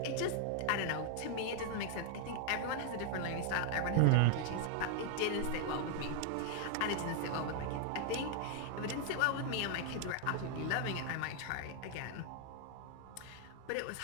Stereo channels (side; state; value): both; different; correlation 0.00